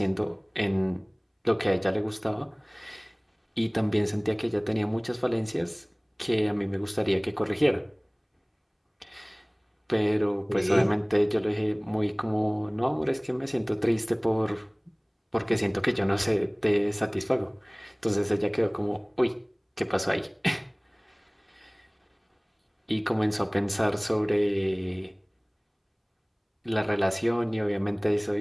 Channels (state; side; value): identical; both; correlation 1.00